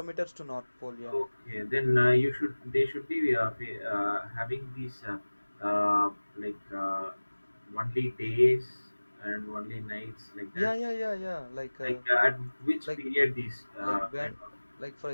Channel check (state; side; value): inverted; both; correlation -1.00